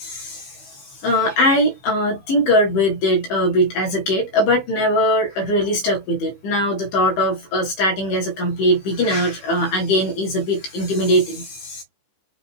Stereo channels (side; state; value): right; late; 15 ms